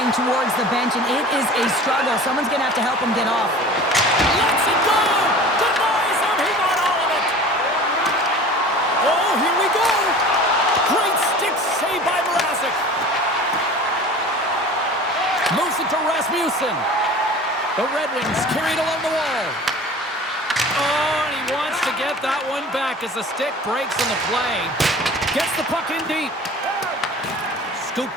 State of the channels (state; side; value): normal; both; correlation 0.41